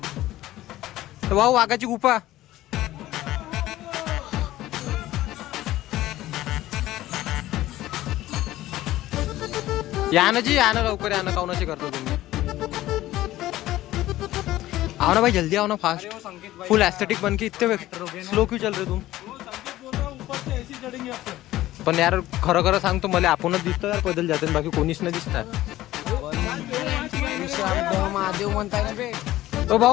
भाऊ वाघाची गुफा या ना जी, या ना लवकर, या ना काउनाशी करतो तुम्ही। आओ ना भाई जल्दी आओ ना, फास्ट फुल एस्थेटिक बन के इतने स्लो क्यों चल रहे तुम? पण यार खरं खरं सांगतो मला आपणच दिसतो यार पैदल जाते, बाकी कोणीच नाही दिसणार। महादेव म्हणताय ना बे. ओ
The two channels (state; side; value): quieter; right; 15.4 dB